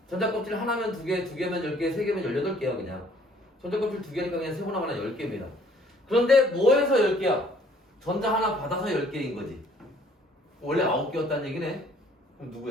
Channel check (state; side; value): normal; both; correlation 0.59